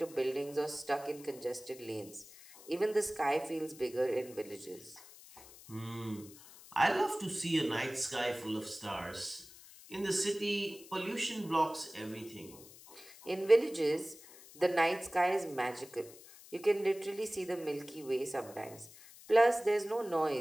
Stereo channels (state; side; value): noise; left; hiss, 19 dB below the sound